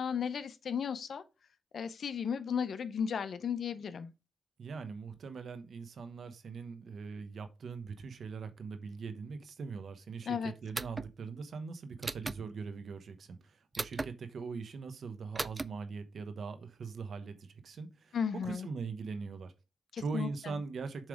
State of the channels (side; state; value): both; normal; correlation 0.77